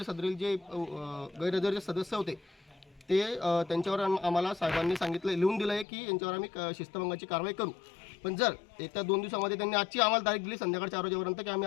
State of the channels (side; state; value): right; drops out; at 5.9 s